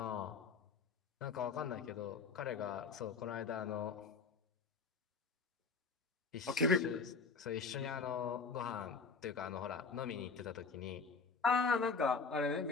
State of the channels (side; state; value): right; quieter; 4.8 dB